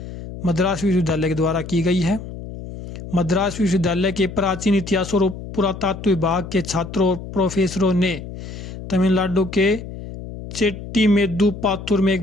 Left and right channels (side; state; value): left; noise; hum, 11 dB below the sound